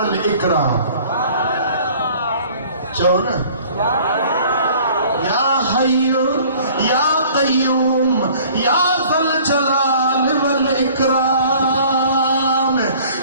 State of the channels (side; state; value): both; inverted; correlation -0.51